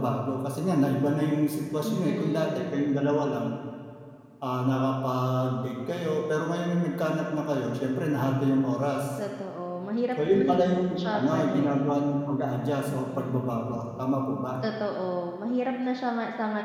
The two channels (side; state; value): both; identical; correlation 1.00